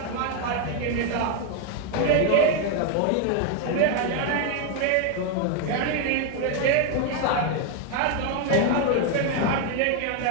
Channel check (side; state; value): both; different; correlation 0.01